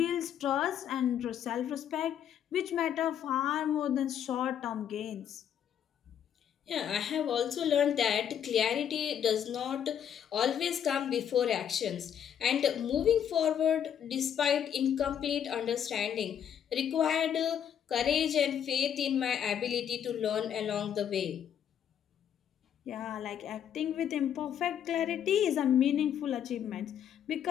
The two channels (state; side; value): quieter; right; 9.1 dB